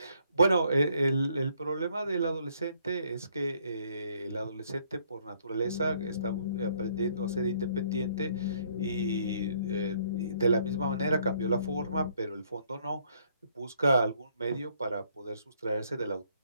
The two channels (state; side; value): inverted; both; correlation -0.66